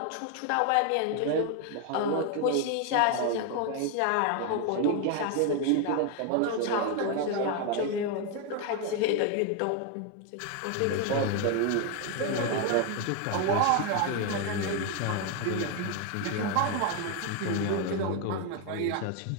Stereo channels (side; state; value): both; different; correlation 0.01